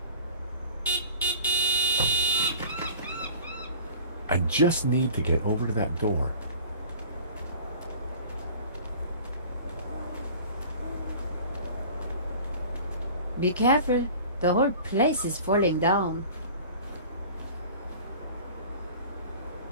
I just need to get over to that door. Be careful. The whole place is falling down.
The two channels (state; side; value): inverted; both; correlation -0.43